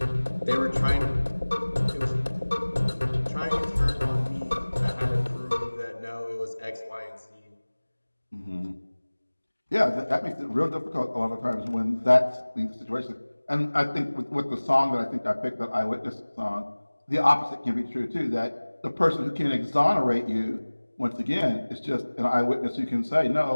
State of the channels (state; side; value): inverted; both; correlation -1.00